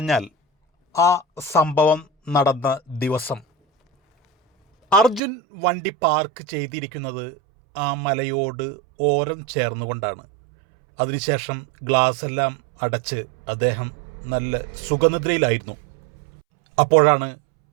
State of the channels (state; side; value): drops out; left; at 5.2 s